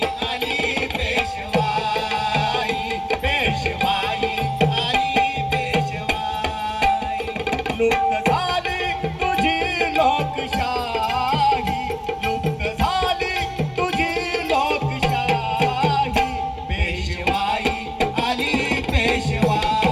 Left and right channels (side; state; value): both; identical; correlation 1.00